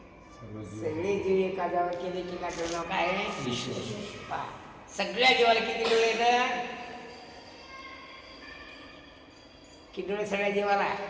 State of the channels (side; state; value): both; identical; correlation 1.00